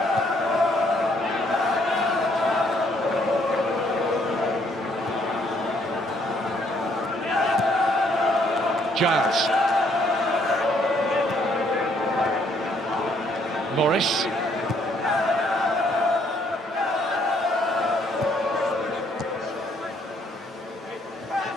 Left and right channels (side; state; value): both; normal; correlation 0.67